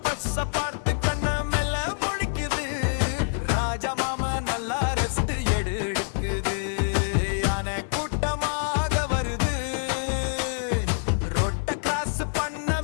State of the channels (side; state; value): right; silent; digital silence